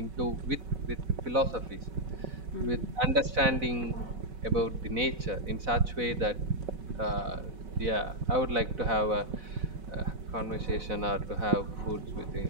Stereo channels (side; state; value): left; late; 4.0 ms